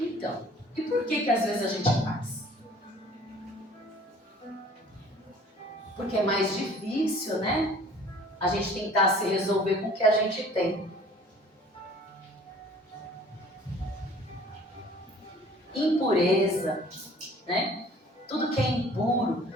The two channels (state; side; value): normal; both; correlation 0.51